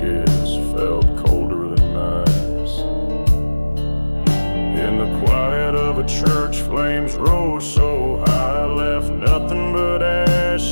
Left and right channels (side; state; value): both; inverted; correlation -1.00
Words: felt colder than ice. In the quiet of a church, flames rose so high, left nothing but